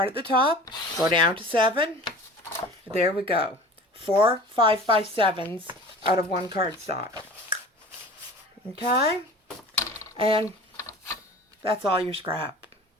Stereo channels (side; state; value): both; normal; correlation 0.41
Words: at the top, go down to 7. There we go. 4 5x7s out of one cardstock. Okay? And that's all your scrap.